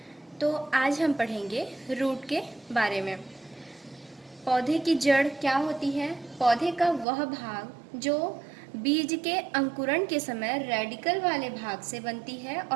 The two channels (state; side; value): drops out; left; at 7.1 s